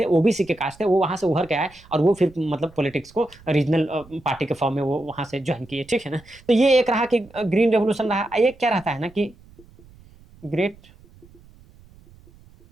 ओबीसी के कास्ट थे, वो वहाँ से उभर के आए, और वो फिर मतलब पॉलिटिक्स को रीजनल पार्टी के फॉर्म में वो वहाँ से ज्वाइन किए, ठीक है ना। तो ये एक रहा कि ग्रीन रेवोल्यूशन रहा। एक क्या रहता है ना कि ग्रेट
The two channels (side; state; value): right; noise; rumble, 25 dB below the sound